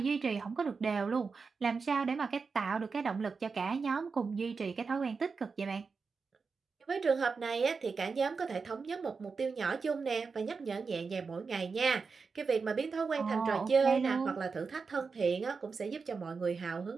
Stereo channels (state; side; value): quieter; left; 4.9 dB